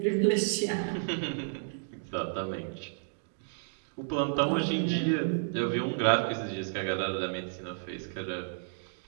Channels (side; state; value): left; silent; digital silence